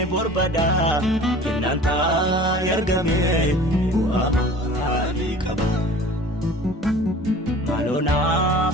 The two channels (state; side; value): normal; both; correlation 0.44